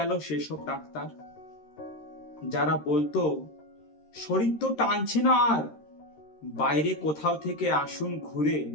সেসব ডাক্তার যারা বলতো শরীর তো টানছে না আর, বাইরে কোথাও থেকে আসুন ঘুরে,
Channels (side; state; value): right; late; 13 ms